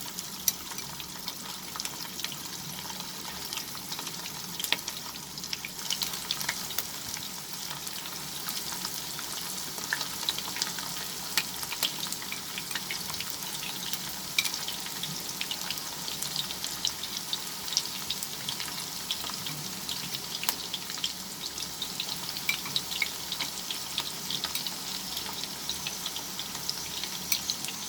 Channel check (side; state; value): both; identical; correlation 1.00